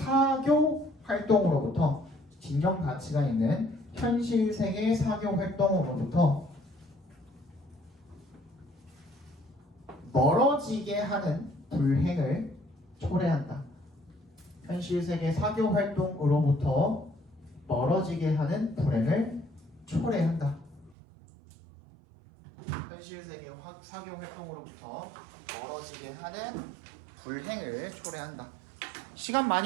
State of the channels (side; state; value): left; drops out; at 21.0 s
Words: 활동으로부터 진정 가치가 있는 현실 세계 사교 활동으로부터 멀어지게 하는 불행을 초래한다. 현실 세계 사교 활동으로부터 멀어지게 하는 불행을 초래한다. 현실 세계 사교 활동으로부터 멀어지게 하는 불행을 초래한다. 시간